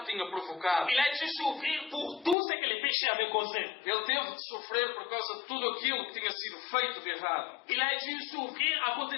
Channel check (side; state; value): right; drops out; at 2.4 s